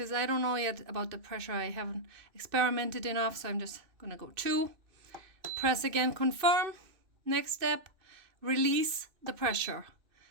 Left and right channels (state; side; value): late; left; 2.6 ms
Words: I don't know yet about the pressure. I haven't experimented enough, so I'm just going to go 2. Press again, confirm. Next step, release the pressure.